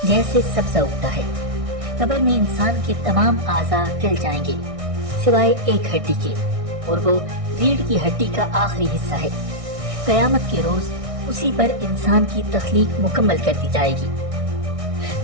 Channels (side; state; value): left; late; 1.6 ms